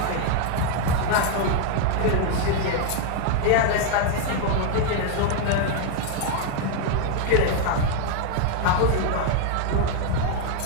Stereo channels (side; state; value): both; different; correlation 0.01